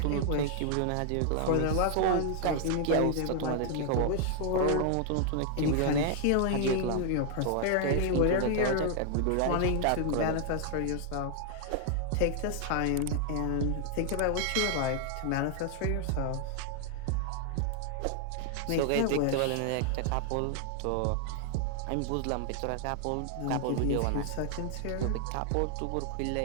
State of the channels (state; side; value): different; both; correlation 0.00